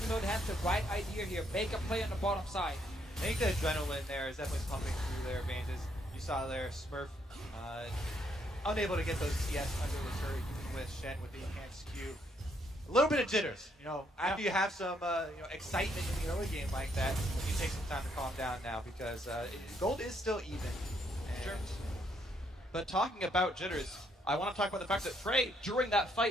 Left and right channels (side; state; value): both; normal; correlation 0.72